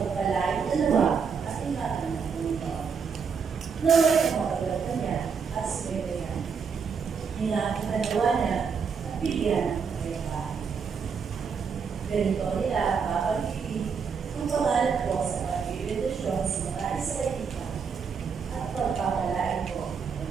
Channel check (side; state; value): left; quieter; 6.1 dB